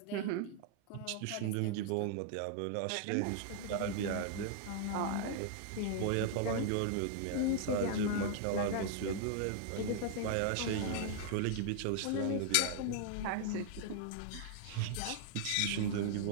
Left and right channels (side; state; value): both; different; correlation -0.01